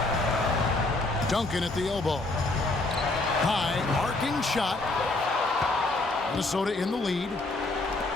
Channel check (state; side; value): quieter; right; 3.0 dB